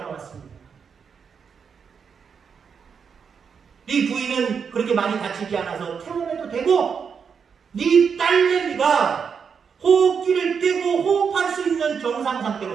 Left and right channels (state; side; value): quieter; left; 6.4 dB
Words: 왔습니다. 네 부인은 그렇게 많이 다치지 않아서 퇴원해도 되고 네 딸내미가 호흡기를 떼고 호흡할 수 있는 정상